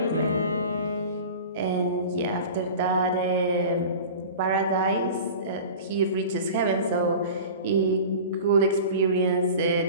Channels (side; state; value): both; inverted; correlation -0.36